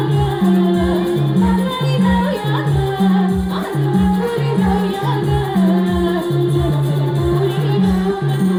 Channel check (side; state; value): both; identical; correlation 1.00